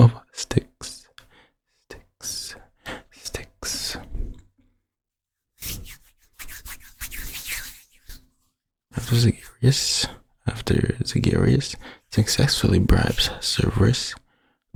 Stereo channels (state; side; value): identical; both; correlation 1.00